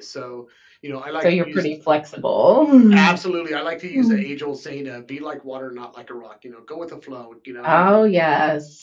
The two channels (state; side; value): identical; both; correlation 1.00